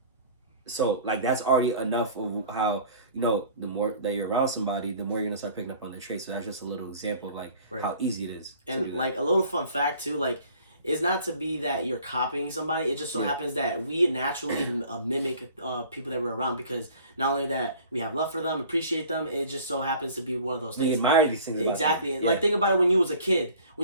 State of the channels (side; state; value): both; inverted; correlation -0.49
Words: So like that's already enough of how, you know, the more that you're around somebody, the more you're gonna start picking up on their traits. So that's just a little example of like how easy it is. And like a little fun fact too, like it's not to be that you're copying somebody. It just so happens that we naturally mimic people that we're around, because not only that we have love for them, appreciate them, it just so happens to be one of those things. We admire these things. Exactly. And like think about it when you was a kid.